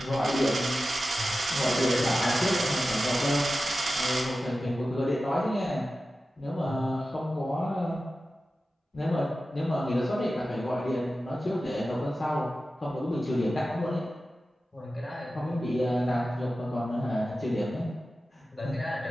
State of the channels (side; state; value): both; normal; correlation 0.94